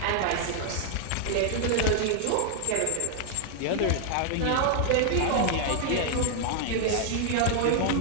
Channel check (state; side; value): different; both; correlation 0.00